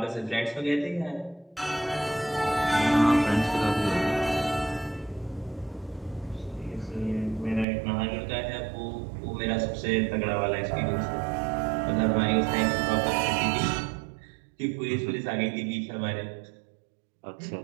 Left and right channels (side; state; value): left; drops out; at 7.7 s